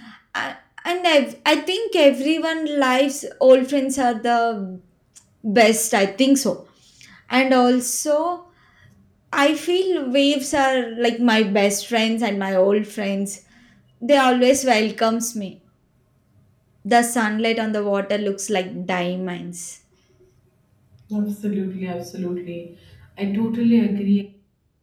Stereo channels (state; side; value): identical; both; correlation 1.00